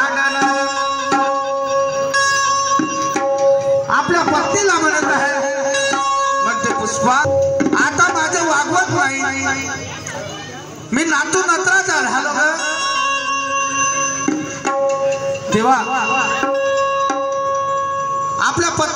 आपल्या पत्नीला म्हणत आहे म्हणते पुष्पा आता माझं वागवत नाही मी नातू नत्राचा झालो ग तेव्हा आपल्या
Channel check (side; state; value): both; identical; correlation 1.00